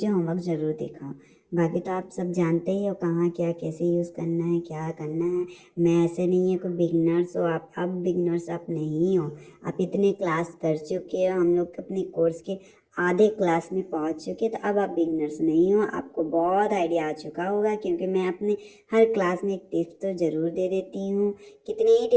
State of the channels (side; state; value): both; identical; correlation 1.00